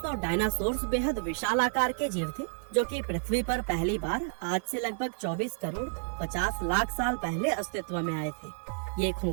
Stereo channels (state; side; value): silent; left; digital silence